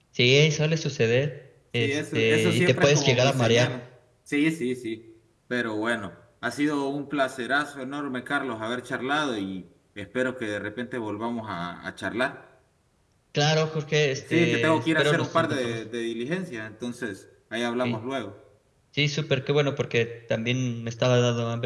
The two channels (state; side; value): identical; both; correlation 1.00